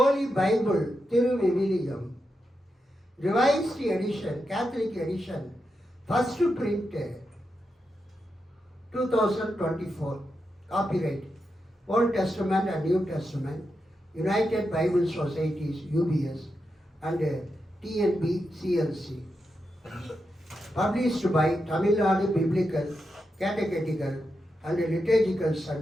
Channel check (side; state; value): both; normal; correlation 0.87